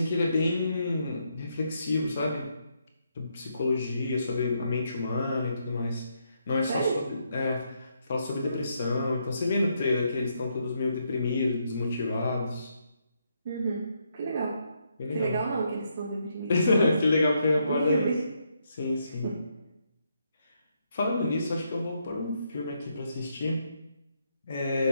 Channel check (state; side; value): inverted; both; correlation -0.77